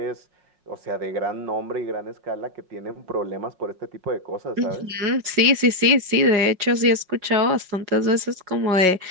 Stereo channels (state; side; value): late; left; 5.5 ms